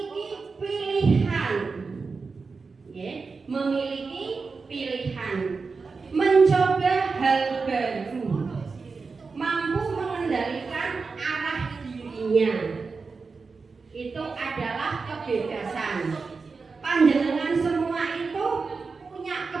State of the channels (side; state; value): left; quieter; 4.6 dB